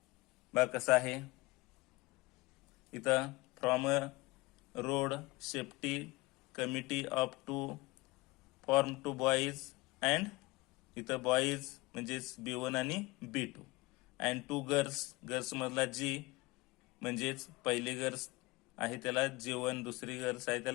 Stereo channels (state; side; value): quieter; right; 22.5 dB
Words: बघा कसं आहे. इथं from a road safety committee of 2 form 2 boys and इथं बॉईज म्हणजेच B1 आणि B2 अँड 2 गर्ल्स मधला G म्हणजेच पहिली गर्ल्स आहे त्याला G1, दुसरी गर्ल्स आहे